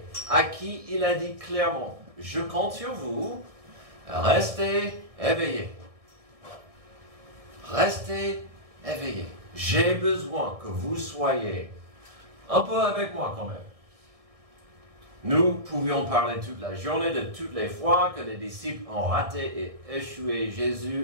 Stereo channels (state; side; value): late; left; 1.6 ms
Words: à qui il a dit clairement, « Je compte sur vous, restez éveillés. Restez éveillés. J'ai besoin que vous soyez un peu avec moi quand même. » Nous pouvions parler toute la journée de toutes les fois que les disciples ont raté et échoué